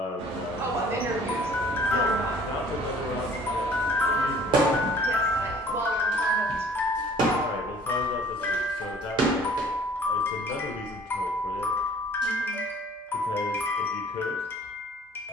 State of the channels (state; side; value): normal; both; correlation 0.53